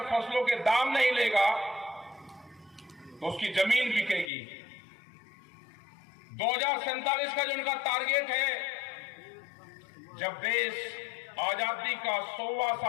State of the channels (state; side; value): drops out; right; at 4.3 s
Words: फसलों के दाम नहीं लेगा तो उसकी जमीन बिकेगी। 2047 का जो उनका टारगेट है, जब देश आजादी का 100वां